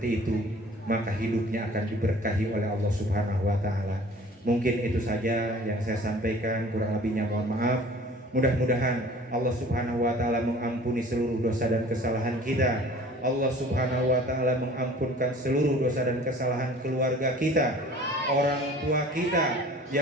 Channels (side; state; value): both; normal; correlation 0.48